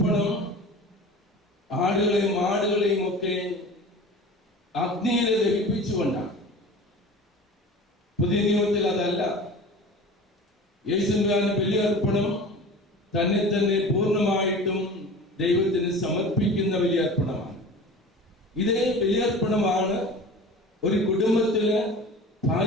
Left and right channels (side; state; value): both; normal; correlation 0.38